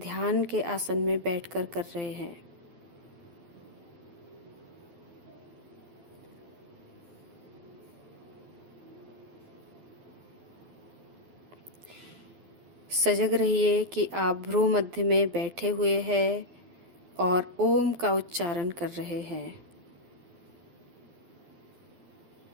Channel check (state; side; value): late; left; 12 ms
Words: के आसन में बैठकर कर रहे हैं। सजग रहिए कि आप भ्रू मध्य में बैठे हुए हैं और ओम का उच्चारण कर रहे हैं।